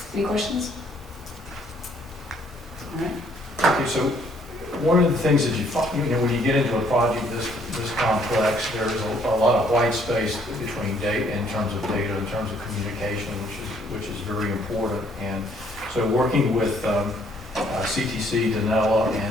Any questions? All right. Okay, so one of the things that you find, when you get into a project this complex, there's a lot of white space between data, in terms of data, in terms of communication, which is very important. And so working with CTC, Danella,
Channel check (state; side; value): normal; both; correlation 0.65